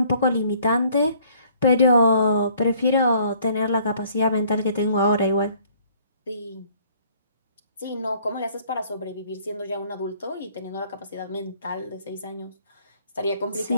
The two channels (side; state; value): both; inverted; correlation -0.60